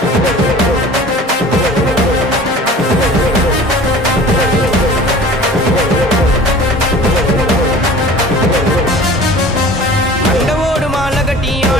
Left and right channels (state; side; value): normal; both; correlation 0.43